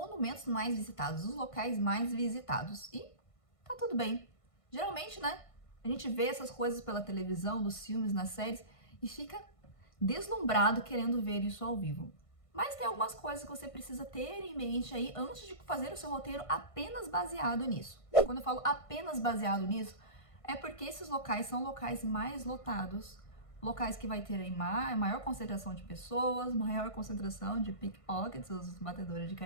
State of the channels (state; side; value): late; right; 1.5 ms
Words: mais visitados, os locais mais visitados. E tá tudo bem. Geralmente, né, a gente vê essas coisas pela televisão, nos filmes, nas séries e fica deslumbrado querendo ver isso ao vivo. Mas tem algumas coisas que você precisa ter em mente aí antes de fazer o seu roteiro apenas baseado nisso. Quando eu falo apenas baseado nisso, é porque esses locais são locais mais lotados, locais que vai ter aí maior concentração de pessoas, maior concentração de pickpockets, os batedores de